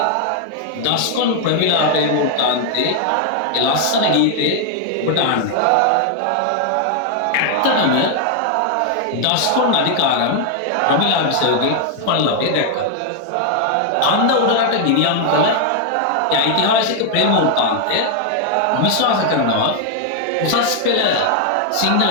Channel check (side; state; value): both; different; correlation 0.00